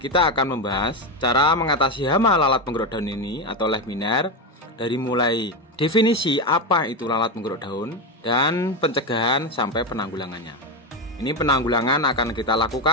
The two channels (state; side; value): normal; both; correlation 0.12